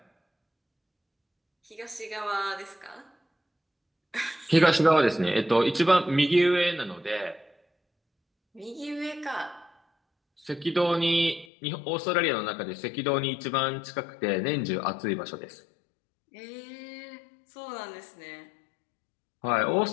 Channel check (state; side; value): drops out; right; at 11.5 s